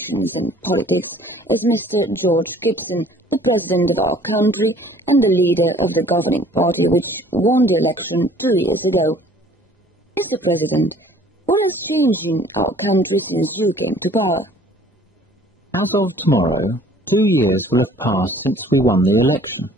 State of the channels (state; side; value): normal; both; correlation 0.53